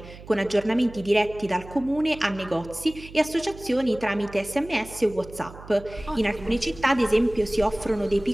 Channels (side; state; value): right; noise; hum, 17 dB below the sound